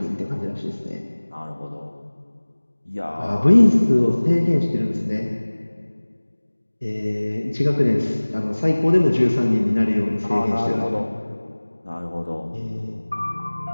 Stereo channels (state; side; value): inverted; both; correlation -1.00